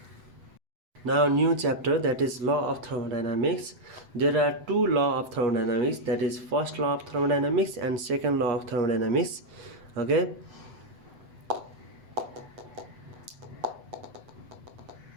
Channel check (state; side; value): late; left; 8.0 ms